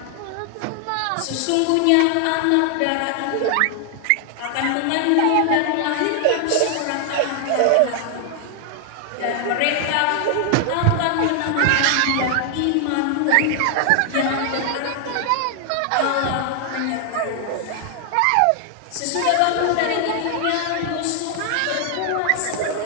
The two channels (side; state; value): both; different; correlation 0.00